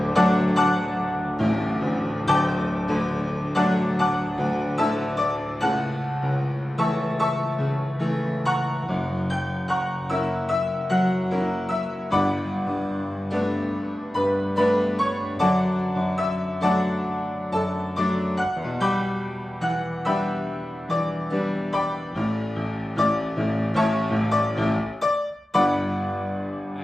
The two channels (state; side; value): normal; both; correlation 0.94